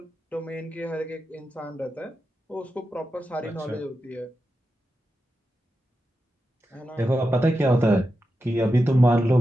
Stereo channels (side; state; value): both; normal; correlation 0.89